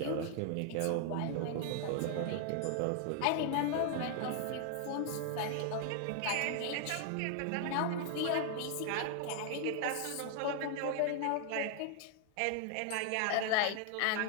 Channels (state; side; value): different; both; correlation 0.00